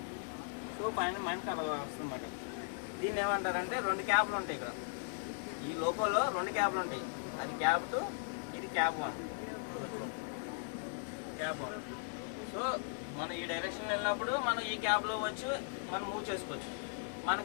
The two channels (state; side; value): silent; right; digital silence